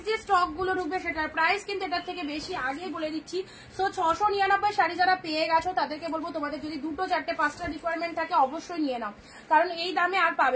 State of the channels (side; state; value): both; identical; correlation 1.00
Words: যে স্টক গুলো ঢুকবে সেটার প্রাইস কিন্তু এটার থেকে বেশি, আগেই বলে দিচ্ছি। সো 699 শাড়ি যারা পেয়ে গেছো তাদেরকে বলবো তোমাদের যদি 2, 4, 5টা রিকোয়ারমেন্ট থাকে অবশ্যই নিয়ে নাও, কারণ এই দামে আর